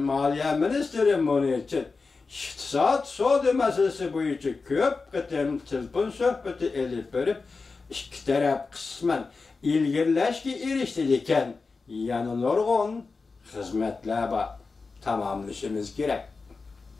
Ministeri Munich'in iktisat soda masalasi bo'yicha ko'p qatam telefon suhbati elib berib, ikki taraf qisman ilgirlashga erishdi ekan, yana nurg'un xizmatlar bor, tamomlashimiz kerak.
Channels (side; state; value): right; quieter; 4.2 dB